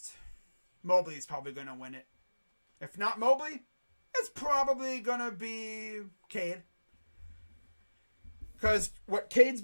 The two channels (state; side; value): inverted; both; correlation -1.00